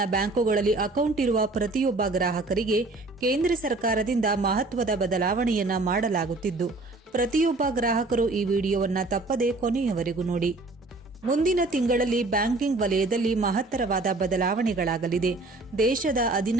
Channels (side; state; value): left; quieter; 3.2 dB